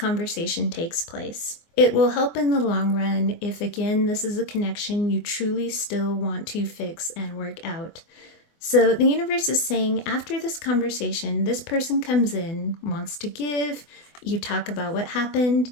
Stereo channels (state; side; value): late; right; 24 ms